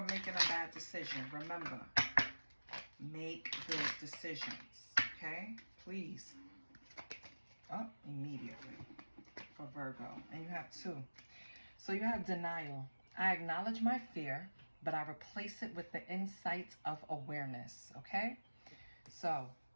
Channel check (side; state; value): both; inverted; correlation -1.00